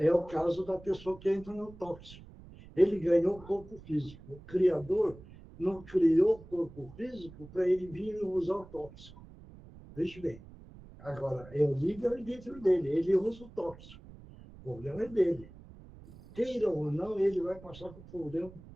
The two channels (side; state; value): right; noise; rumble, 19 dB below the sound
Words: o caso da pessoa que entra no tóxico. Ele ganhou o corpo físico. O Criador não criou o corpo físico para ele vir usar o tóxico. Veja bem. Agora, é o livre-arbítrio dele. Ele usa o tóxico. O problema é dele. Queira ou não, ele vai passar por problema